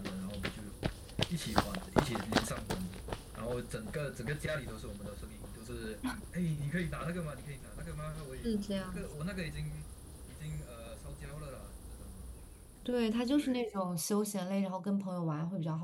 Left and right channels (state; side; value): identical; both; correlation 1.00